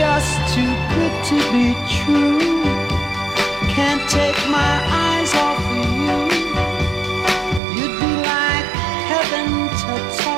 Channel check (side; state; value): left; drops out; at 7.6 s